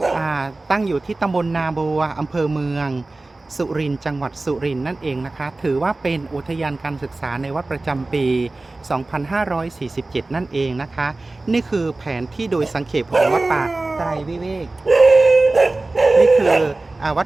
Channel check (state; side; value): quieter; left; 3.1 dB